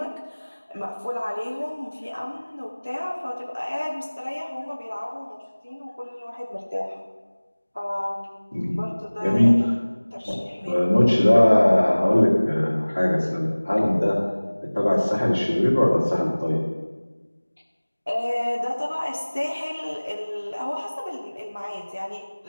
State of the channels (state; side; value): inverted; both; correlation -1.00